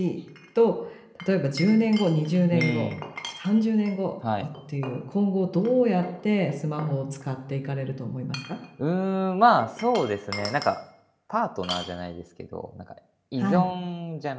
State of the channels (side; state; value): both; identical; correlation 1.00